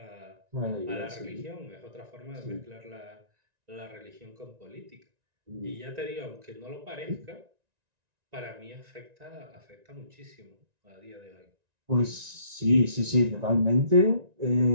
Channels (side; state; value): left; late; 1.9 ms